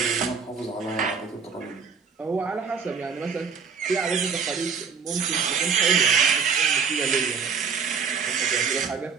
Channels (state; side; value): quieter; left; 6.0 dB